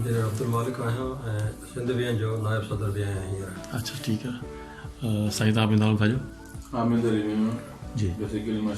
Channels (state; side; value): identical; both; correlation 1.00